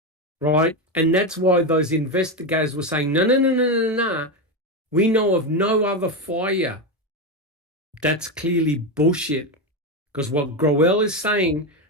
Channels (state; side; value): normal; both; correlation 0.12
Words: Right? And that's why those investigators were saying, no, no, no, no, no, no. We know of no other fire. That's clearly bullshit. Because what Growell is saying,